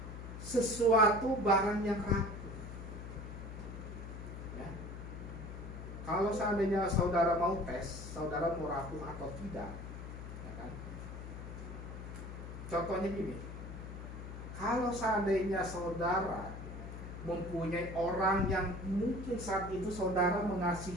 sesuatu barang yang rapuh. Ya. Kalau seandainya saudara mau tes, saudara mau rapuh atau tidak, ya kan? Contohnya gini, kalau seandainya saudara mempunyai orang yang mungkin saat itu saudara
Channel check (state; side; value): noise; left; hum, 9 dB below the sound